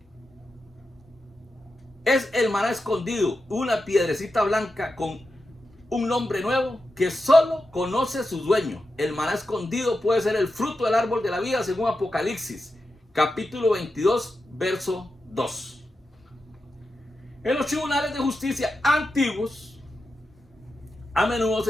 Es el maná escondido, una piedrecita blanca con un nombre nuevo que solo conoce su dueño. El maná escondido puede ser el fruto del árbol de la vida según Apocalipsis, capítulo 22, verso 2. En los tribunales de justicia antiguos, a menudo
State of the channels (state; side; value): normal; both; correlation 0.90